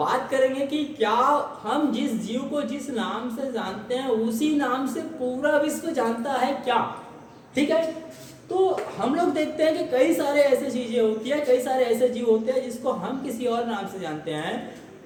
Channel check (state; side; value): identical; both; correlation 1.00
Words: करेंगे कि क्या हम जिस जीव को जिस नाम से जानते हैं उसी नाम से पूरा विश्व जानता है क्या। ठीक है, तो हम लोग देखते हैं कि कई सारे ऐसे चीजें होती है, कई सारे ऐसे जीव होते हैं जिसको हम किसी और नाम से जानते हैं,